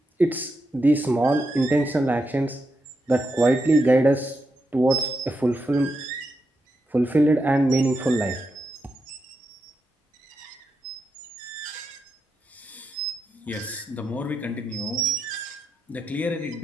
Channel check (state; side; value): normal; both; correlation 0.85